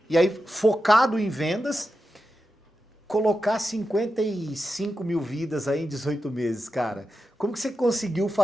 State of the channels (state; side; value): normal; both; correlation 0.90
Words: e aí focado em vendas, colocar 55 mil vidas aí em 18 meses, cara. Como que você conseguiu